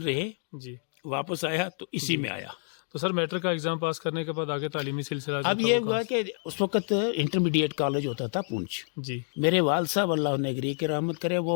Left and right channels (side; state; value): right; silent; digital silence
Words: رہے. جی. واپس آیا تو اسی میں آیا. تو سر میٹرک کا ایگزام پاس کرنے کے بعد آگے تعلیمی سلسلہ اب یہ ہوا کہ اس وقت انٹرمیڈیٹ کالج ہوتا تھا پونچھ. جی. میرے والد صاحب اللہ نگری کے رحمت کرے,